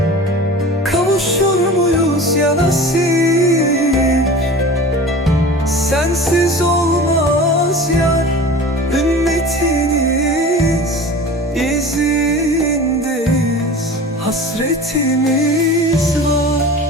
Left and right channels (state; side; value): normal; both; correlation 0.37